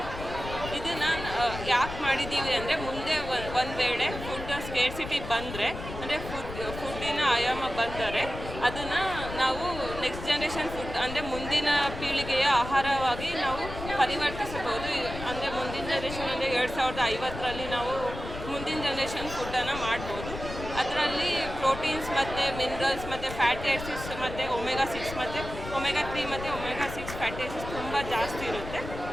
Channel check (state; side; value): noise; left; rumble, 9 dB below the sound